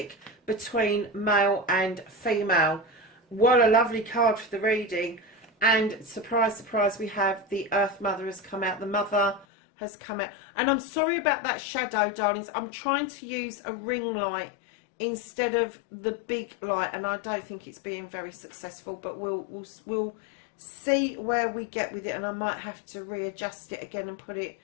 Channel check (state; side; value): drops out; right; at 9.5 s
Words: between male and female. What a lovely card for the reading. And surprise, surprise, we have the Earth Mother has come out. The Mother has come out. And I'm sorry about that shadow, darlings. I'm trying to use a ring light instead of the big light, and I don't think it's being very successful, but we'll see where we get with it, and I might have to readjust it again and put it